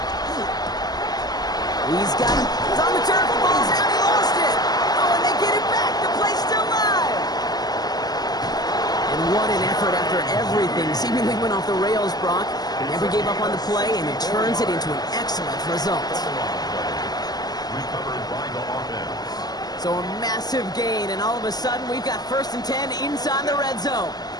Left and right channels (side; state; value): right; late; 0.19 ms